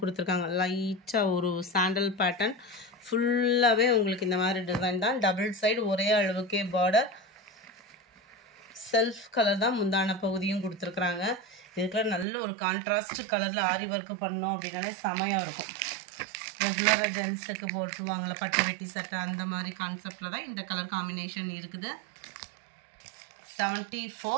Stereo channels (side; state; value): left; drops out; at 12.2 s